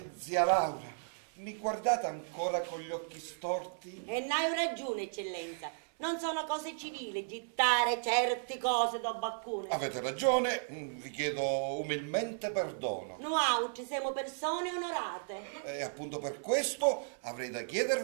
Zia Laura, mi guardate ancora con gli occhi storti? E n'hai ragione, eccellenza. Non sono cose civili gittare certe cose da baccone. Avete ragione, vi chiedo umilmente perdono. Noi siamo persone onorate. E appunto per questo avrei da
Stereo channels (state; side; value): silent; left; 55 dB below the other